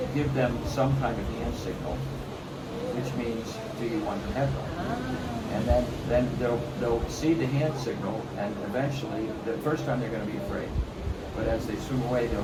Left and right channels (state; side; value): identical; both; correlation 1.00